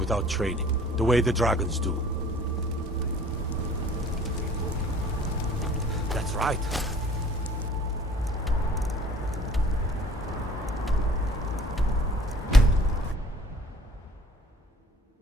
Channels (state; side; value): normal; both; correlation 0.52